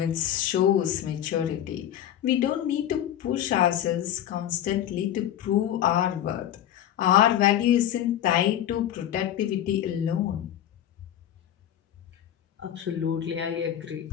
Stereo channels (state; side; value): quieter; right; 11.1 dB